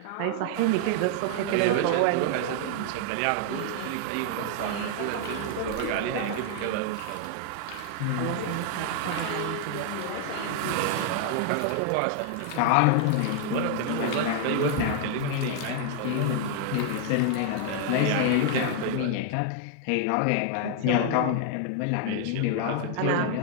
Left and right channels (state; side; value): different; both; correlation 0.00